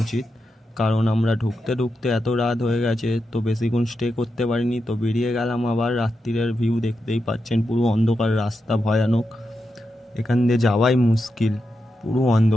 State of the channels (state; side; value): normal; both; correlation 0.87